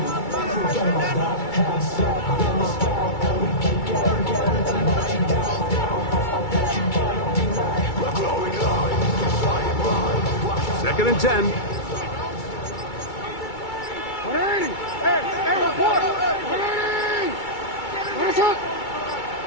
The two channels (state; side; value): late; right; 2.3 ms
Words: Second and 10.